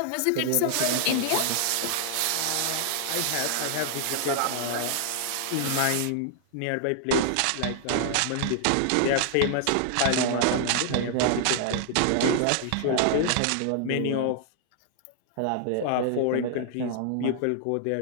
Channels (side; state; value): both; different; correlation -0.01